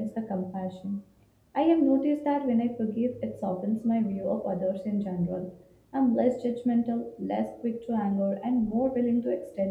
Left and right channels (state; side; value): identical; both; correlation 1.00